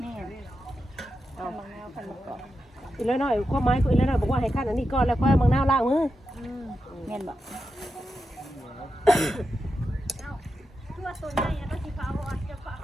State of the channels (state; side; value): normal; both; correlation 0.88